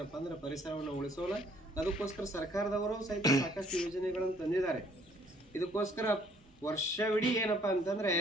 ಅಂದ್ರೆ ಪರಿಸರವನ್ನು ಉಳಿಸೋಣ. ಅದಕ್ಕೋಸ್ಕರ ಸರ್ಕಾರದವರು ಸಹಿತ ಸಾಕಷ್ಟು ಯೋಜನೆಗಳನ್ನು ತಂದಿದ್ದಾರೆ. ಇದಕ್ಕೋಸ್ಕರ ವರ್ಷವಿಡೀ ಏನಪ್ಪ ಅಂತಂದರೆ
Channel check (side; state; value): both; normal; correlation 0.62